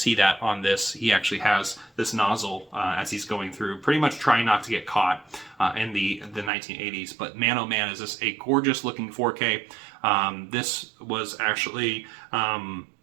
that on this. He actually has this nozzle as he's going through, pretty much trying not to get caught in the 1980s. But man, oh man, is this a gorgeous looking 4K. This was actually,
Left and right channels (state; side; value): drops out; left; at 6.5 s